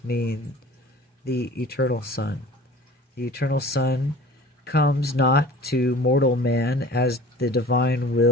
mean the eternal Son. The eternal Son comes not to mortal man as the divine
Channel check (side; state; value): both; normal; correlation 0.43